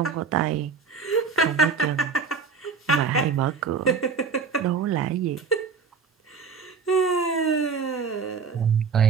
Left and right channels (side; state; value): left; quieter; 5.5 dB